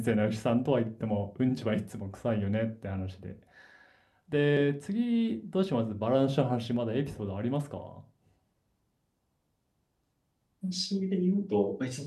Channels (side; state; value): both; identical; correlation 1.00